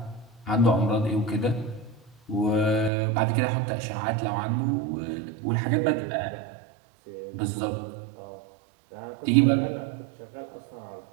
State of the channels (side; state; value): left; drops out; at 2.9 s